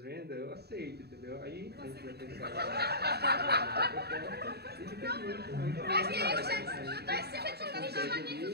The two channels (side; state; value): left; late; 0.47 ms